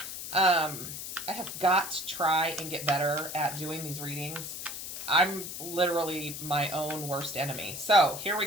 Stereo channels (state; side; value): noise; left; hiss, 8 dB below the sound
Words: I have got to try and get better at doing these readings. I'm literally my own worst enemy. So here